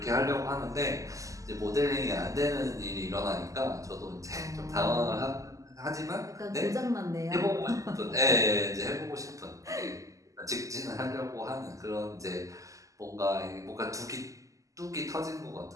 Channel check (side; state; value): left; late; 0.16 ms